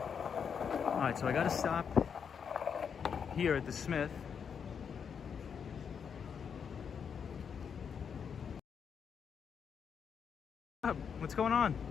Alright, so I gotta stop here at the Smith. What's going on?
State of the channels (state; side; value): quieter; right; 6.9 dB